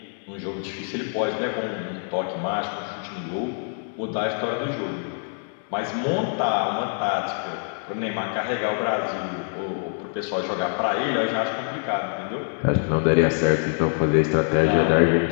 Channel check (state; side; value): silent; right; 57 dB below the other